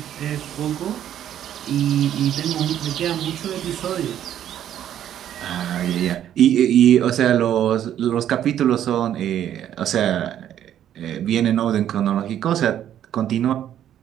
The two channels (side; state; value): left; quieter; 10.8 dB